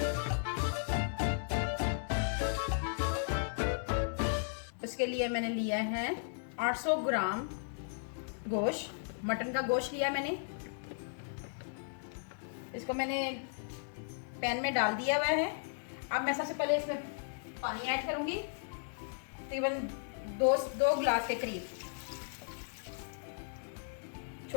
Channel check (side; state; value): right; silent; digital silence